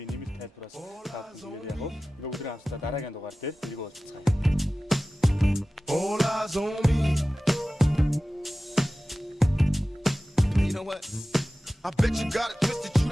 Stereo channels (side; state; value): both; normal; correlation 0.96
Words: нэмэлт тайлбараас та бүхэнд яг энэ өдрийн хамтдаа дараагийн дугаар дээр тэрийг уулзцгаая. All eyes on me. You know what? I bet you got it twisted, you